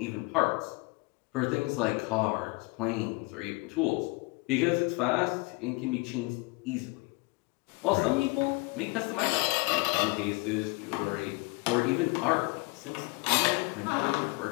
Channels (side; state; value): right; quieter; 26.5 dB